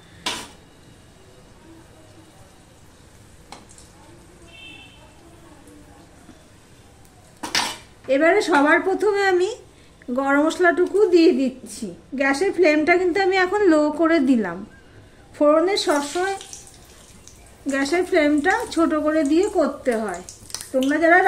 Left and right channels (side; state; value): both; identical; correlation 1.00